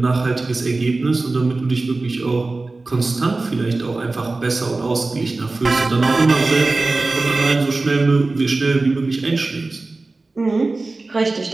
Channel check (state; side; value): quieter; left; 3.4 dB